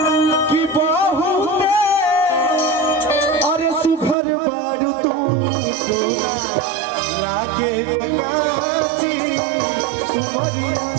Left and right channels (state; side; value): drops out; left; at 4.2 s